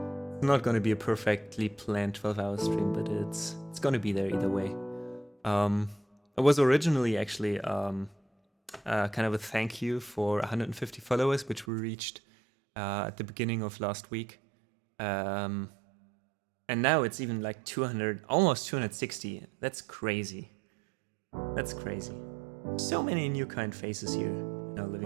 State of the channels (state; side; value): drops out; left; at 11.7 s